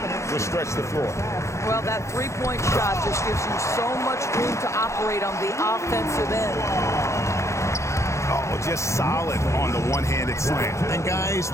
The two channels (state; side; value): late; right; 0.14 ms